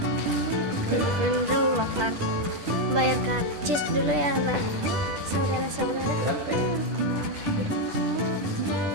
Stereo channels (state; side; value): late; left; 10 ms